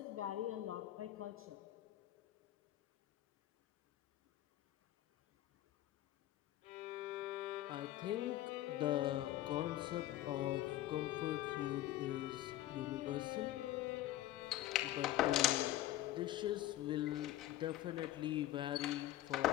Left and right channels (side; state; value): right; quieter; 14.7 dB